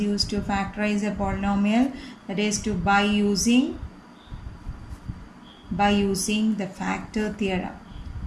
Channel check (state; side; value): identical; both; correlation 1.00